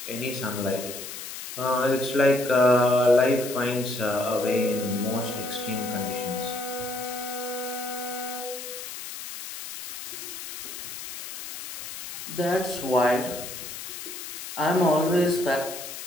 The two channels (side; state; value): left; noise; hiss, 9 dB below the sound